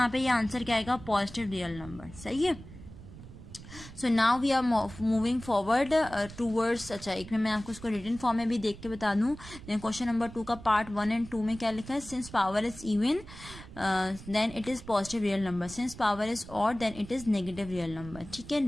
पे ये आंसर क्या आएगा, पॉजिटिव रियल नंबर, सही है। So now we are moving forward towards, अच्छा एक में मैं आपको उसको रिटन फॉर्म में भी देख के बता दूं। क्वेश्चन नंबर 2 का पार्ट 1 एंड 2 में क्या लिखा है, since power is even then it is positive real number, since power is odd then it is negative real number, ठीक है।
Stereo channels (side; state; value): right; noise; rumble, 16 dB below the sound